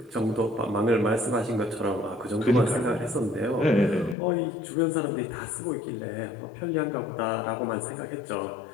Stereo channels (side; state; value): right; drops out; at 4.2 s